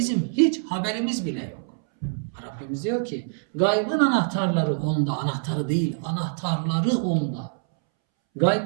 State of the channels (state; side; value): silent; left; 62 dB below the other